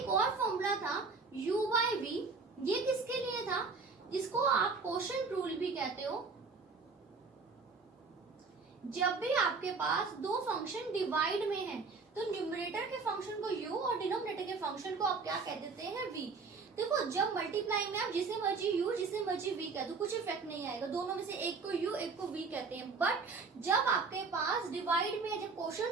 और फॉर्मूला था u/v, ये किसके लिए था, जिसको आप क्वोशंट रूल भी कहते हो। जब भी आपके पास दो फंक्शन डिवाइड में हैं तो न्यूमरेटर के फंक्शन को u और डिनोमिनेटर के फंक्शन को आप क्या कह देते हैं, v। देखो जब मल्टीप्लाई में आप जिसे मर्जी u जिसे मर्जी v कह दो, कुछ इफेक्ट नहीं आएगा, दोनों में से एक को u एक को v कहते हैं। बट जब आपके पास डिवाइड में जब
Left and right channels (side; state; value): left; quieter; 4.5 dB